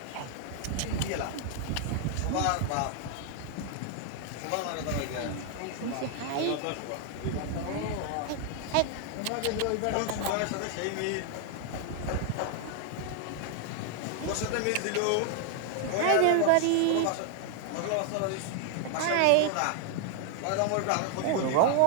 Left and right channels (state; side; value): different; both; correlation 0.00